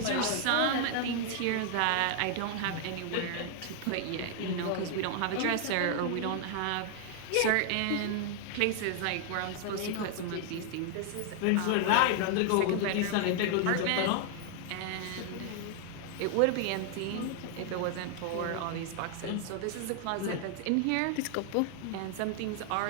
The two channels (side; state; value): both; different; correlation 0.00